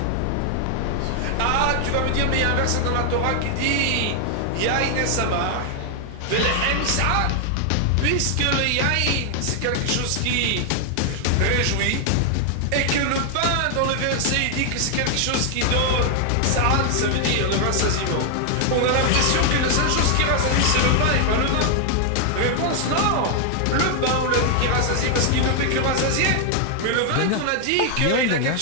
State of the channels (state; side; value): different; both; correlation 0.00